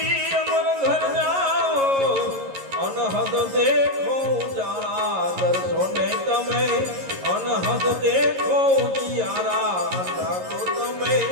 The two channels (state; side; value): late; left; 11 ms